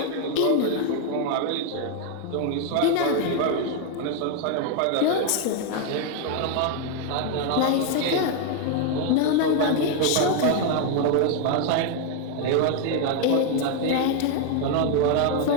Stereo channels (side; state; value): both; different; correlation 0.01